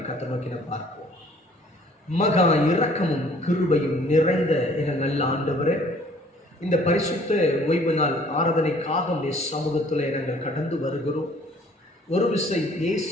கர்த்தரை நோக்கி பார்ப்போம். மகா இரக்கமும் கிருபையும் நிறைந்த என நல்ல ஆண்டவரே, இந்த பரிசுத்த ஓய்வு நாள் ஆராதனைக்காக உடைய சமூகத்தில் நாங்கள் கடந்து வருகிறோம். ஒரு விசை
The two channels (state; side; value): normal; both; correlation 0.56